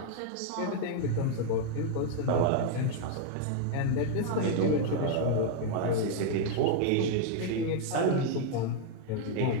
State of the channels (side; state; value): both; different; correlation 0.00